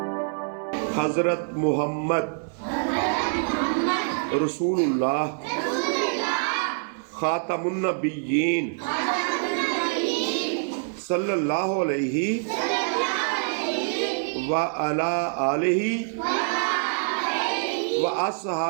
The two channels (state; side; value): silent; left; 61 dB below the other